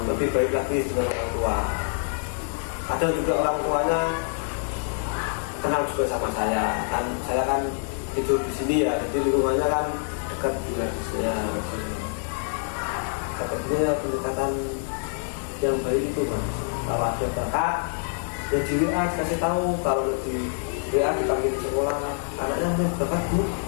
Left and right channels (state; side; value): silent; right; 59 dB below the other